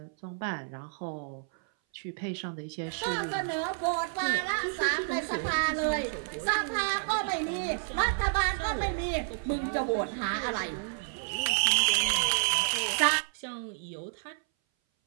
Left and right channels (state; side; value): silent; left; 58 dB below the other